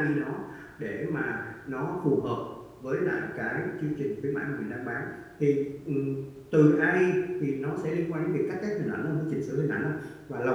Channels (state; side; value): identical; both; correlation 1.00